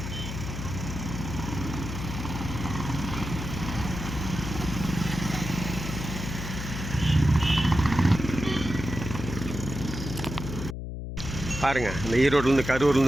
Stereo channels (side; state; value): left; noise; hum, 6 dB below the sound